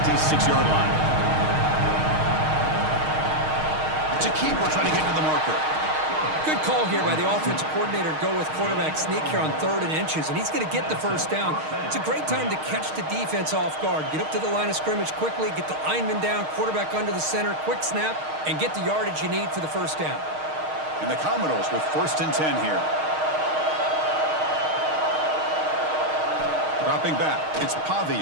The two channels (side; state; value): left; late; 6.4 ms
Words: line. It's a keeper trying to get to the marker. Good call here by the offensive coordinator to go with quarterback sneak here on 3rd and inches, and he's going to get the first down. It's a great time to catch the defense off guard. Get up to the line of scrimmage quickly, get the lineman down, quarterback under the center, quick snap, and get the yardage you need for the first down. And the Commodores with 1st and 10 here. Dropping back, it's